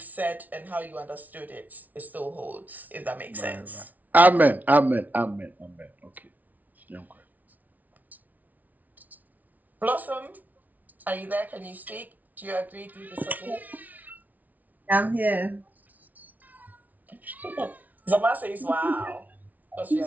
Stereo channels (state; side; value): late; left; 0.076 ms